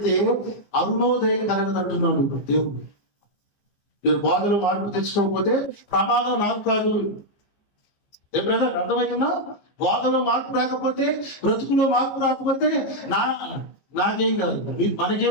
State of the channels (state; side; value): late; right; 15 ms